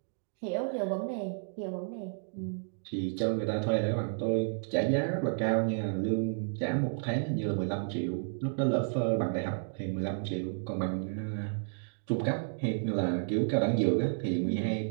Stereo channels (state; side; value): silent; left; digital silence